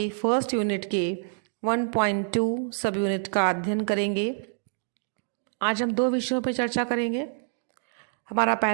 फर्स्ट यूनिट के 1.2 सब यूनिट का अध्ययन करेंगे। आज हम दो विषयों पर चर्चा करेंगे। हमारा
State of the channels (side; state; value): left; silent; digital silence